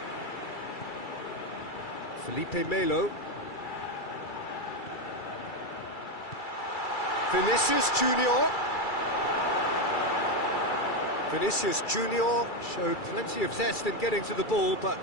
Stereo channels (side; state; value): right; late; 2.3 ms